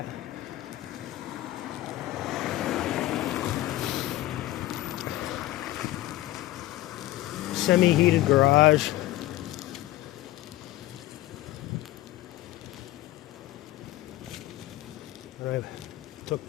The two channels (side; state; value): right; quieter; 15.9 dB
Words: Semi-heated garage. And I took